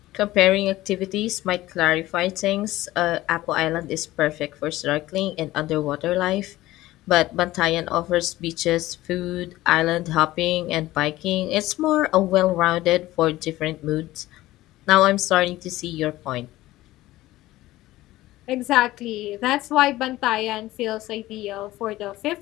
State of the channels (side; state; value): right; quieter; 16.7 dB